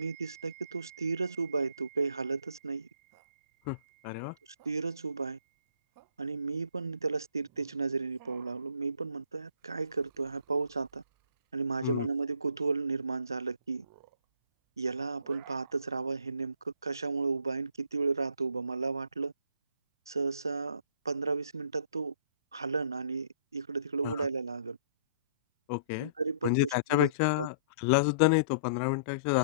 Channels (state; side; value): inverted; both; correlation -0.54